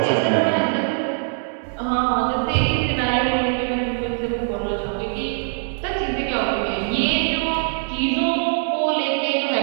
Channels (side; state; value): left; silent; 64 dB below the other